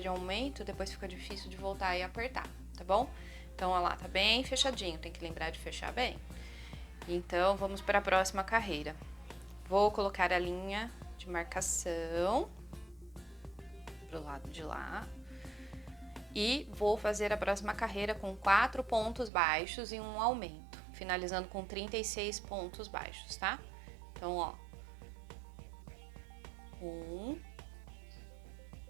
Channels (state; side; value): drops out; left; at 19.3 s